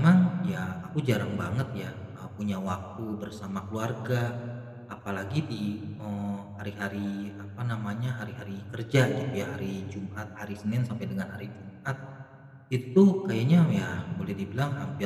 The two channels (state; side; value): identical; both; correlation 1.00